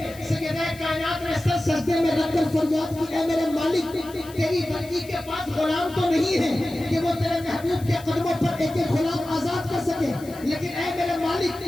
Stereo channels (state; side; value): noise; left; hiss, 20 dB below the sound